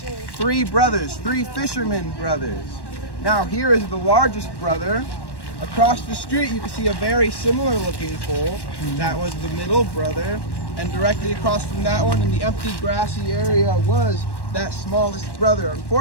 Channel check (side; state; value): right; late; 1.1 ms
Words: 3 brothers, 3 fishermen brothers. Now here is the largest brother. Across the street, you can see a very similar looking pole. That was the middle brother. And directly across from that one in the empty grassy area was that smallest brother.